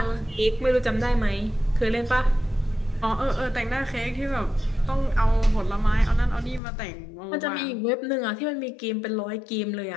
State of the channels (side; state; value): right; drops out; at 6.6 s